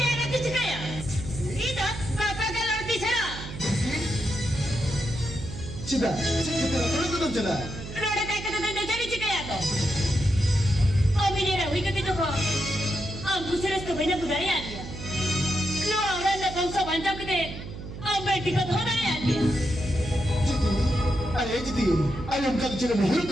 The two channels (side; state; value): right; noise; hum, 10 dB below the sound